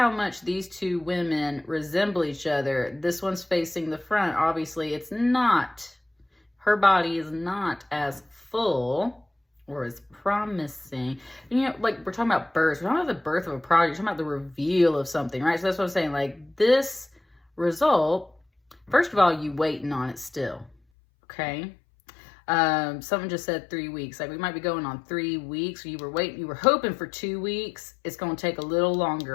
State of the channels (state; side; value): drops out; right; at 20.8 s